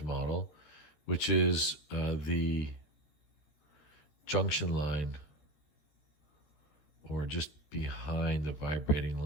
model, which is the junction line, or just behind the vibrating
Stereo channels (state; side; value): late; right; 13 ms